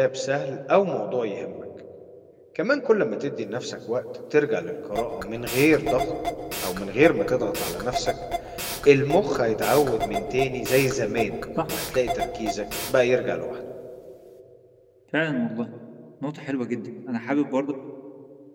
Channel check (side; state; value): both; identical; correlation 1.00